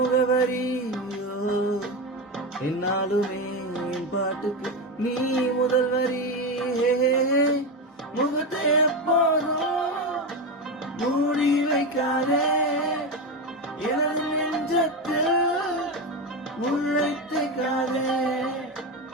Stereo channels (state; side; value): normal; both; correlation 0.16